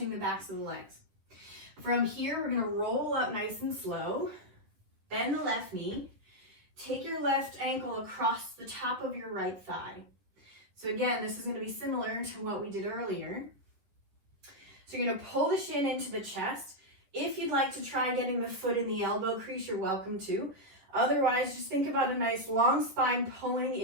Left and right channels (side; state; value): left; late; 10 ms